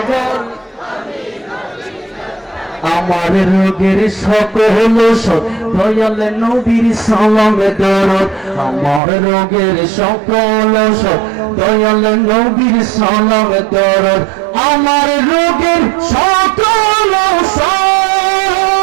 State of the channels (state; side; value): drops out; left; at 9.0 s